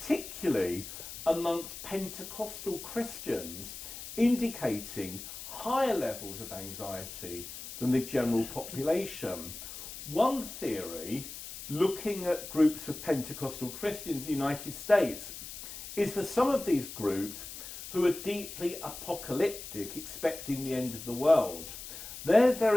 amongst Pentecostal Christians, indicating higher levels of anxiety than the general population. One theory, looking at groups of Pentecostal Christians in the United States, is for some of these groups who are deeply apocalyptic, expecting the end of the world. They're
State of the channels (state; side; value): noise; left; hiss, 11 dB below the sound